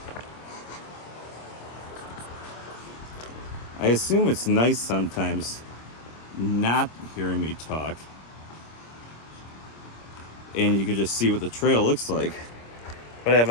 I assume it's nice sometimes not hearing me talk, and you can just see what the trail looks like. But I have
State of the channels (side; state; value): right; late; 26 ms